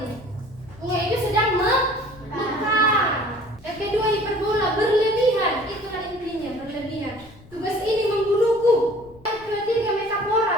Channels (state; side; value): noise; left; rumble, 23 dB below the sound